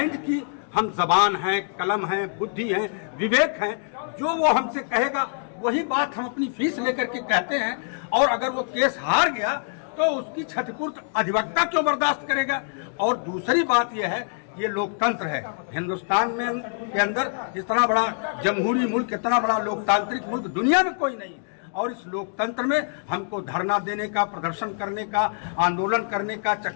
की हम जबान हैं, कलम हैं, बुद्धि हैं, विवेक हैं, जो वो हमसे कहेगा वही बात हम अपनी फीस लेकर के कहते हैं। और अगर वो केस हार गया तो उसकी क्षतिपूर्ति अधिवक्ता क्यों बर्दाश्त करेगा। और दूसरी बात यह है, ये लोकतंत्र है हिंदुस्तान में के अंदर, इतना बड़ा जमहूरी मुल्क, इतना बड़ा लोकतांत्रिक मुल्क दुनिया में कोई नहीं। और इस लोकतंत्र में हमको धरना देने का, प्रदर्शन करने का, आंदोलन करने का,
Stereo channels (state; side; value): silent; right; digital silence